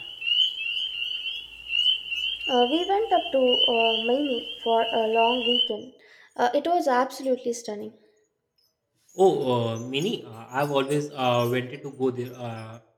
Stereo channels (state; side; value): identical; both; correlation 1.00